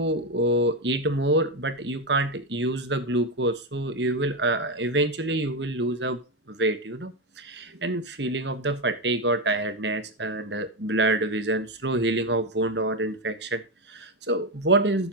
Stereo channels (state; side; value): normal; both; correlation 0.10